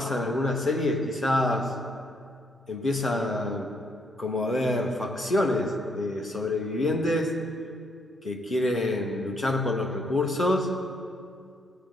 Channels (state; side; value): normal; both; correlation 0.71